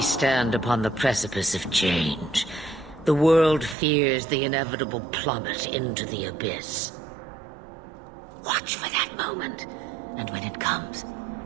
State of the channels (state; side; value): drops out; left; at 3.8 s